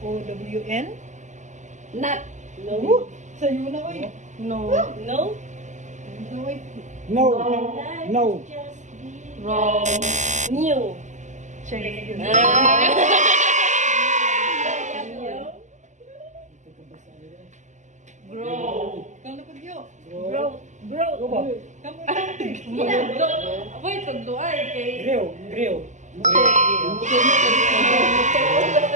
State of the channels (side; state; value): left; late; 0.34 ms